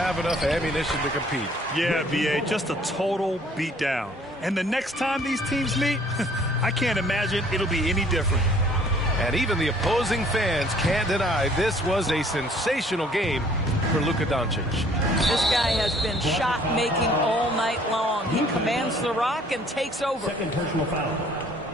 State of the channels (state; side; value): normal; both; correlation 0.58